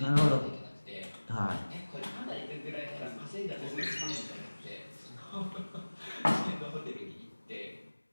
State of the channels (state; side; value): inverted; both; correlation -1.00